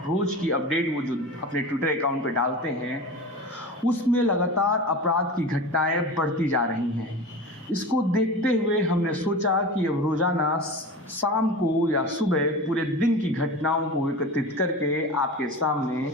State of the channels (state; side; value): normal; both; correlation 0.31